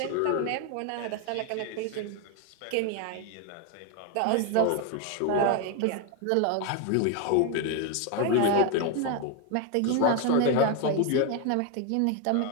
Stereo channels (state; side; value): different; both; correlation 0.01